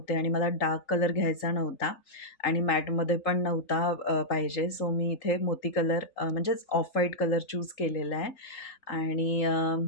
आणि मला डार्क कलर घ्यायचा नव्हता आणि मॅटमध्ये पण नव्हता पाहिजे. सो मी इथे मोती कलर म्हणजेच ऑफ व्हाईट कलर चूज केलेला आहे आणि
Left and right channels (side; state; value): right; late; 3.8 ms